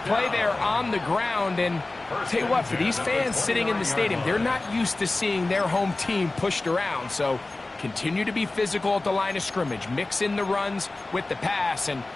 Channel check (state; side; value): quieter; right; 3.1 dB